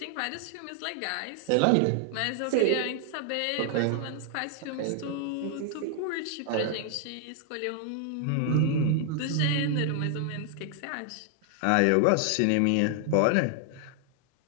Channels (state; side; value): different; both; correlation 0.00